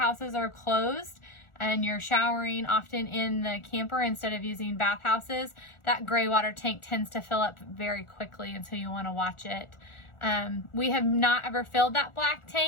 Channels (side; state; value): right; late; 1.4 ms